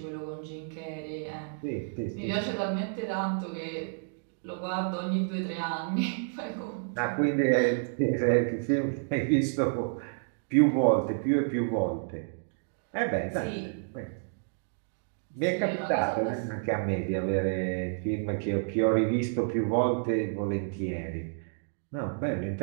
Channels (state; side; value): silent; left; digital silence